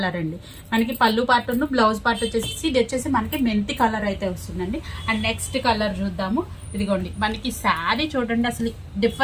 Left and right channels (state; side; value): identical; both; correlation 1.00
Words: అండి. మనకి పళ్ళు పార్ట్ బ్లౌజ్ పార్ట్ వచ్చేసి ఇది వచ్చేసి మనకి మెంతి కలర్ అయితే వస్తుందండి. అండ్ నెక్స్ట్ కలర్ చూద్దాము. ఇదిగోండి మనకి శారీ చూడండి అసలు